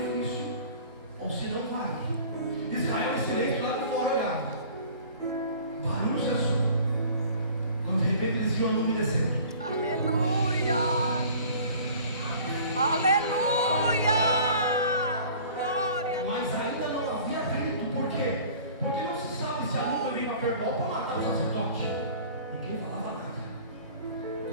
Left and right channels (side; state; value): both; inverted; correlation -0.47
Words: ou se não vai. Israel em silêncio lá de fora olhava. Barulho cessou. Quando de repente eles viam a nuvem descendo. Aleluia. Aleluia. Glória a Deus. Mas ainda não havia atrito. Por quê? Porque não se sabe se a nuvem veio para verbal para matar o sacerdote. Ninguém falava nada.